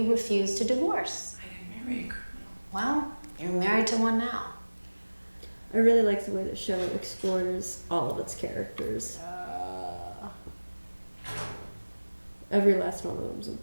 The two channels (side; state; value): both; inverted; correlation -1.00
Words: refuse to divorce. I didn't marry a criminal. Well, you're married to one now. I really like the way the show explores all of its characters. Every last one of them is